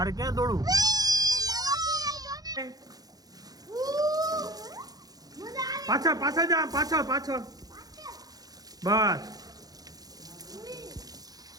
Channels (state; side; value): late; left; 0.18 ms